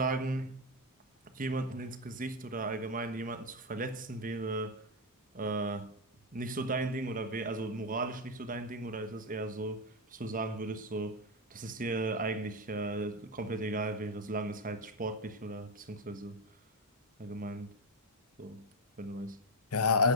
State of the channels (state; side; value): normal; both; correlation 0.06